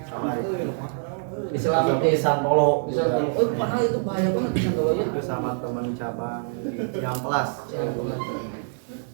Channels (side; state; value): left; silent; 62 dB below the other